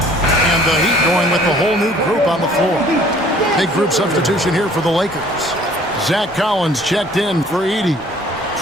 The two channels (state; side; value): normal; both; correlation 0.55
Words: The Heat going with the whole new group on the floor. Big group substitution here for the Lakers. Zach Collins checked in for Edey.